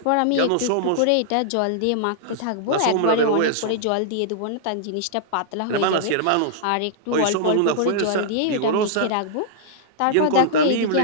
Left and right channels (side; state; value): both; different; correlation -0.01